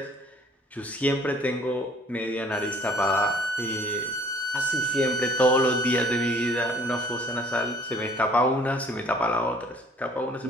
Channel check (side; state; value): both; normal; correlation 0.56